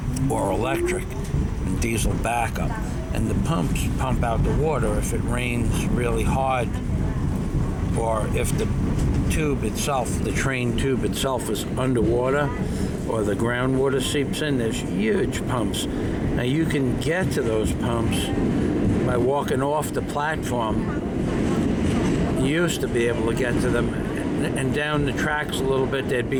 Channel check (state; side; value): identical; both; correlation 1.00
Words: or electric and diesel backup. And the pumps pump out the water if it rains really hard, or if the tube itself, the train tube itself, is underwater, or the groundwater seeps in. There's huge pumps. Now you can get to those pumps by walking off the platform. You used to be able to get to them, and down the tracks a little bit there'd